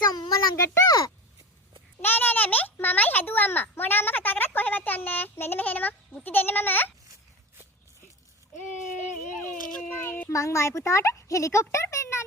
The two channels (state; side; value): normal; both; correlation 0.29